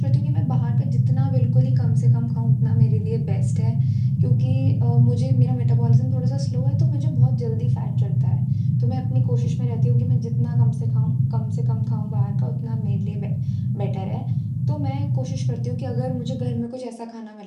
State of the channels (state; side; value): identical; both; correlation 1.00